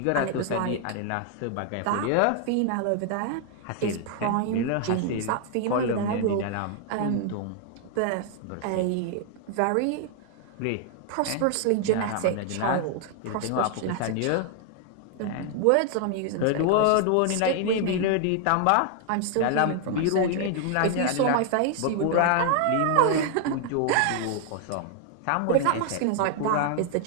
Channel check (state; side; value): different; both; correlation 0.00